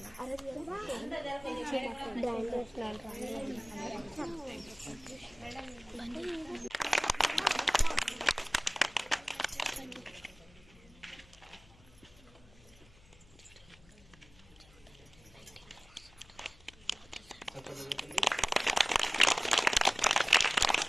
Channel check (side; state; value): left; noise; hum, 25 dB below the sound